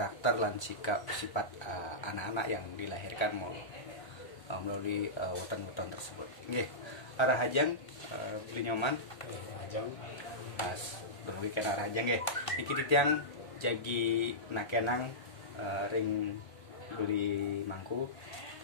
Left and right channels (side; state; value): right; late; 1.3 ms